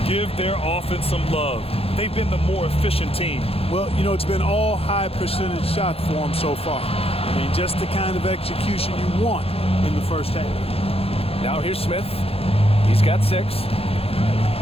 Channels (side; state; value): right; late; 0.28 ms